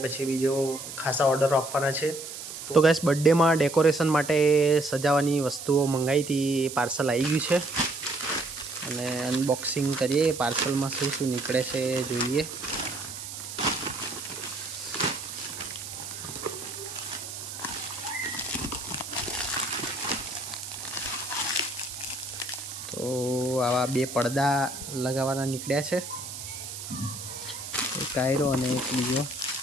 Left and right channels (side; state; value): right; noise; hiss, 9 dB below the sound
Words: પછી બીજો ખાસા ઓર્ડરો આપવાના છે. તો ગાઈસ, બર્થડેમાં ડેકોરેશન માટે સજાવવાની વસ્તુઓ મંગાવી હતી, પાર્સલ આવી ગયું છે અને અનબોક્સિંગ કરીએ. પાર્સલમાં શું શું નીકળે છે જોઈએ. તો આવા 2 પડદા લગાવવાના નીકળ્યા છે, એક આયરો અને એક બીજો